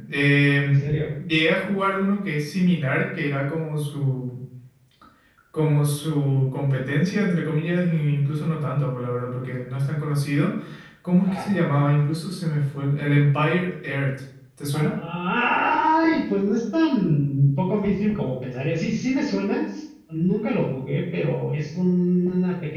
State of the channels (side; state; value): both; identical; correlation 1.00